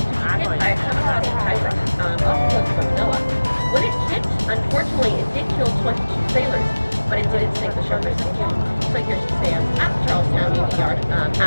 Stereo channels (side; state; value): both; inverted; correlation -1.00